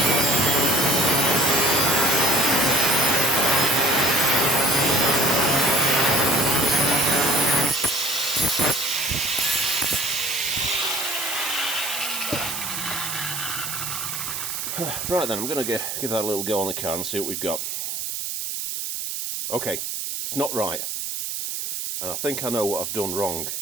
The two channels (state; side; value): noise; right; hiss, 4 dB below the sound